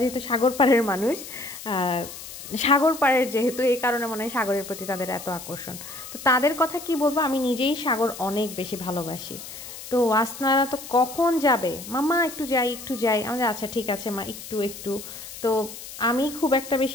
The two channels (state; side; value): noise; left; hiss, 12 dB below the sound